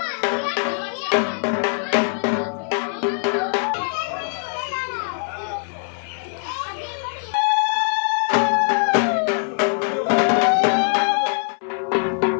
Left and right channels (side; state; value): right; silent; 61 dB below the other